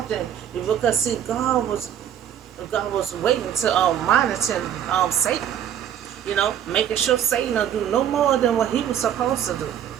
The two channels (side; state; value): left; quieter; 9.9 dB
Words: because see, God was waiting to monitor Satan. Making sure Satan will do no more than what he was supposed to do.